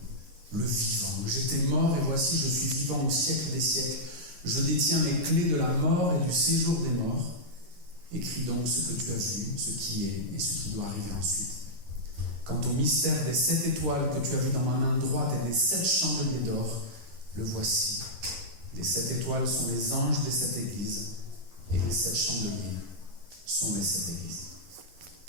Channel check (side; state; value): left; late; 11 ms